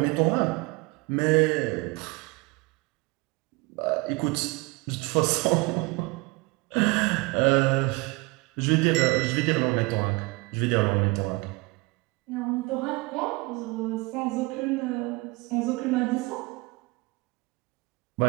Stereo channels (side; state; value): left; quieter; 25.4 dB